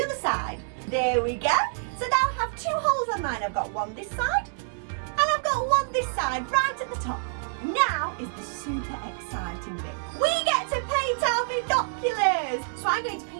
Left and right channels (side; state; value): left; silent; digital silence